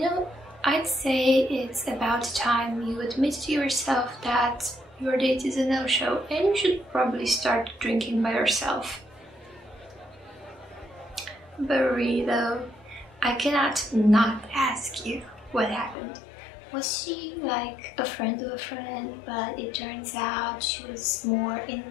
I'd say it's about time you admit to yourself that your date is a no-show and you should probably start drinking by yourself. But really though, I cannot not ask you what happened. Was she like a friend of a friend, but it turns out she was more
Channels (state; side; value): drops out; right; at 16.0 s